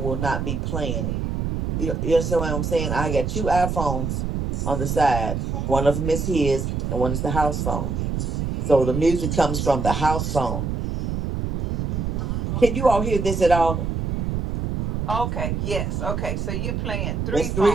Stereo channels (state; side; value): noise; right; rumble, 2 dB below the sound